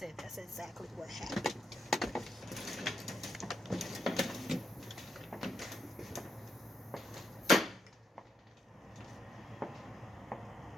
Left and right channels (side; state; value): both; normal; correlation 0.81